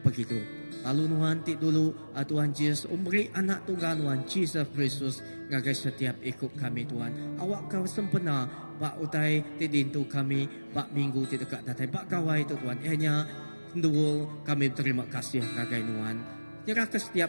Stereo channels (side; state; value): both; inverted; correlation -1.00